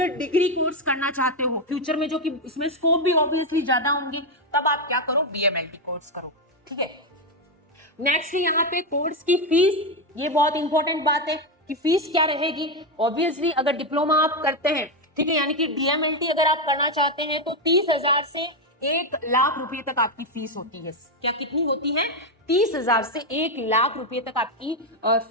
डिग्री कोर्स करना चाहते हो फ्यूचर में, जो कि इसमें स्कोप भी ऑब्वियसली ज्यादा होंगे, तब आप क्या करो, बीएमएलटी कोर्स करो। ठीक है। नेक्स्ट यहाँ पे कोर्स की फीस, ये बहुत इंपॉर्टेंट बात है कि फीस क्या रहेगी। ऑब्वियसली अगर डिप्लोमा आप करते हैं, ठीक है, यानी कि डीएमएलटी अगर आप करना चाहते हैं, तो 30,000 से 1,00,000 रुपए तक आपकी फीस होती है। क्या कितनी होती है? 30,000 से 1,00,000 रुपए तक आपकी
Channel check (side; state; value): both; normal; correlation 0.07